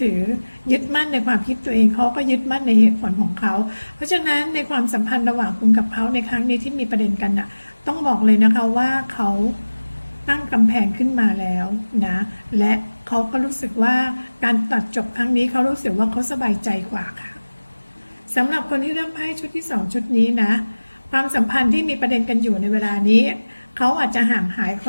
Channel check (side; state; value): both; inverted; correlation -1.00